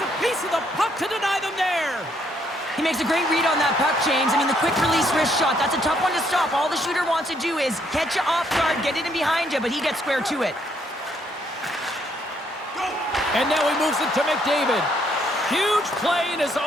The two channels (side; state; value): both; normal; correlation 0.71